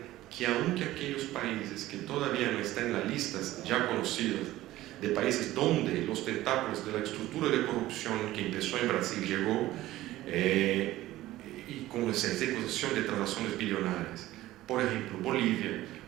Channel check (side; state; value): left; quieter; 15.9 dB